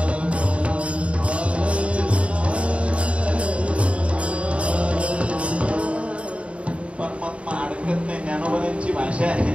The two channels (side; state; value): left; late; 0.061 ms